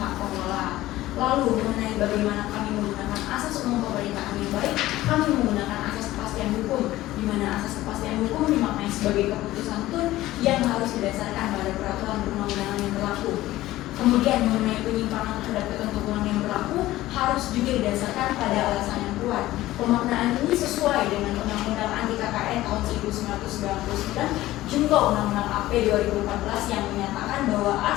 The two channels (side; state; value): right; quieter; 16.1 dB